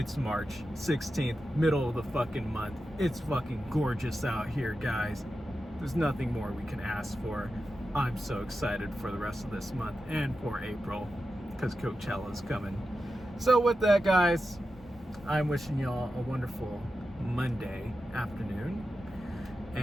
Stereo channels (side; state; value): both; normal; correlation 0.91